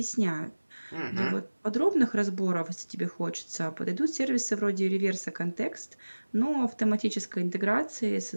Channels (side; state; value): both; inverted; correlation -1.00